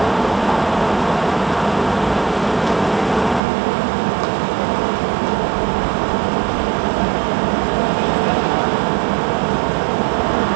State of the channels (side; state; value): left; drops out; at 3.4 s